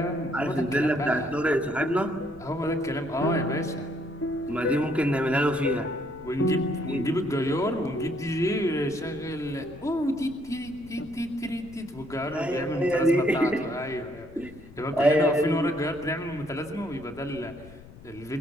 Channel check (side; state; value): left; noise; rumble, 19 dB below the sound